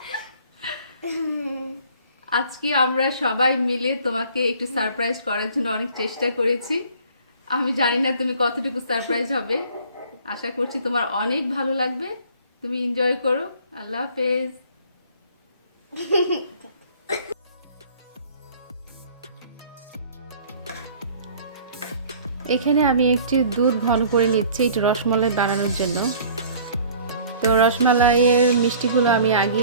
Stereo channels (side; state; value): both; inverted; correlation -0.51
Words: আজকে আমরা সবাই মিলে তোমাকে একটু সারপ্রাইজ করার জন্য অনেক চেষ্টা করেছি। আমি জানি না তুমি কতটুকু সারপ্রাইজ হবে। আশা করছি তোমার অনেক ভালো লাগবে। তুমি এনজয় করো। আল্লাহ হাফেজ। এখানে আমি একটু দুধ ঘন করে নিচ্ছি একটু রসমালাই বানানোর জন্য। তো রসমালাইয়ের মিষ্টিগুলো আমি